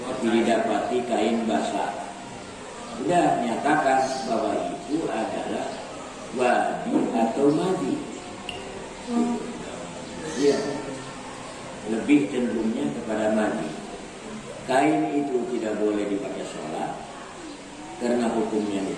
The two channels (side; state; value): both; identical; correlation 1.00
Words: tapi didapati kain basah. Sudah nyatakan bahwa itu adalah wadi atau madi. Ya, lebih cenderungnya kepada madi. Kain itu tidak boleh dipakai sholat karena hukumnya